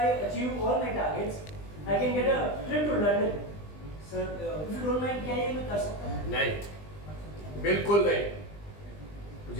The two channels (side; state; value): right; late; 20 ms